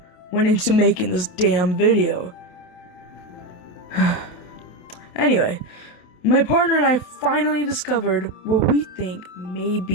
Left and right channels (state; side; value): late; right; 28 ms